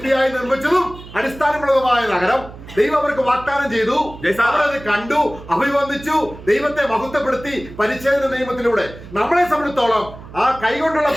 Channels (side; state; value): right; noise; hum, 16 dB below the sound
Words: നിർമ്മിച്ചതും അടിസ്ഥാനമുള്ളതുമായ നഗരം ദൈവം അവർക്ക് വാഗ്ദാനം ചെയ്തു. അവരത് കണ്ടു, അഭിവന്ദിച്ചു, ദൈവത്തെ മഹത്വപ്പെടുത്തി പരിച്ഛേദന നിയമത്തിലൂടെ. നമ്മളെ സംബന്ധിച്ചോളം ആ കൈകൊണ്ടുള്ള